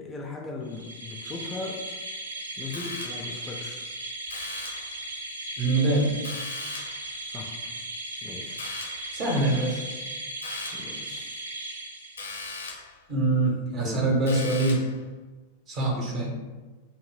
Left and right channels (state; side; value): normal; both; correlation -0.12